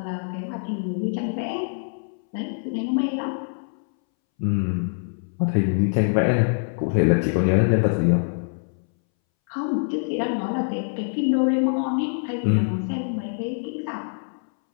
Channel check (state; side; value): silent; right; 62 dB below the other